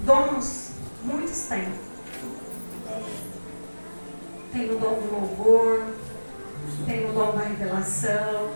dons, muitos têm. Tem o dom do louvor, tem o dom da revelação,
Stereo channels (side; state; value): both; inverted; correlation -1.00